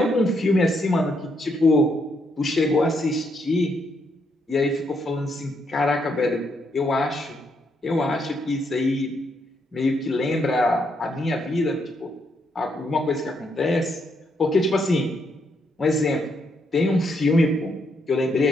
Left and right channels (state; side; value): normal; both; correlation 0.76